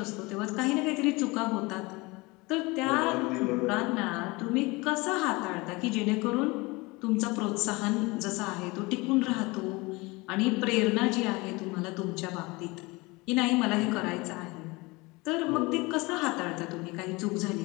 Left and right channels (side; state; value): right; quieter; 24.1 dB